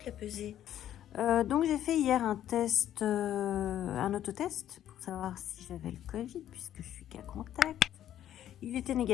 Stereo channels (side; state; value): right; quieter; 11.4 dB